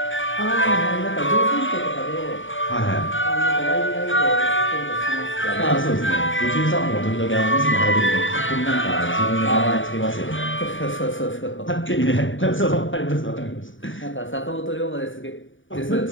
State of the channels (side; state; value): right; late; 0.56 ms